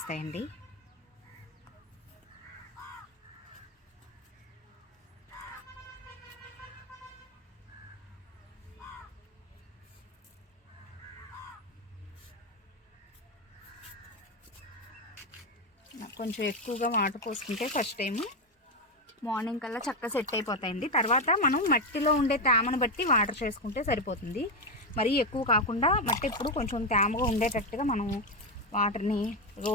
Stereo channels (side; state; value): both; normal; correlation 0.08